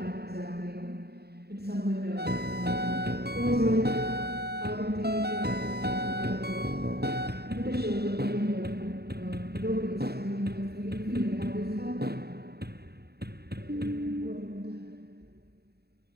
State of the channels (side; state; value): left; late; 0.47 ms